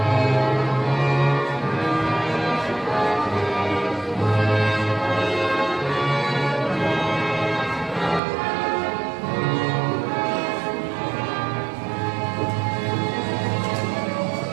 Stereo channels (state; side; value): drops out; left; at 8.2 s